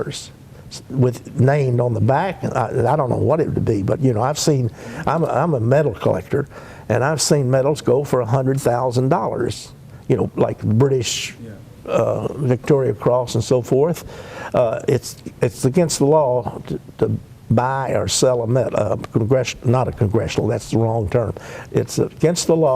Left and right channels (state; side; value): identical; both; correlation 1.00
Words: with named on the back. I don't know what it would be, but you know, I'm a medal collector, and I've seen medals go for $100,000. You know, like British Victoria Cross and so forth. It's against the law to buy or sell a medal, not a congressional, that's the wrong term. It's against the